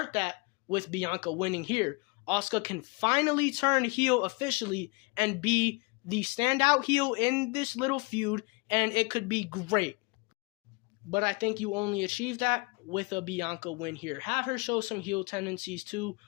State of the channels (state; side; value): quieter; right; 28.5 dB